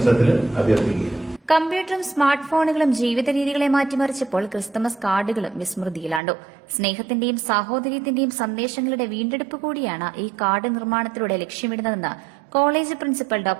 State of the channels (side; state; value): left; drops out; at 6.2 s